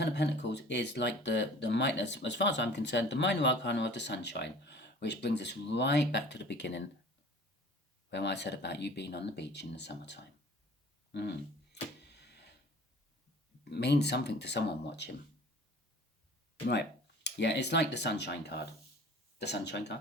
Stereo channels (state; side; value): normal; both; correlation 0.46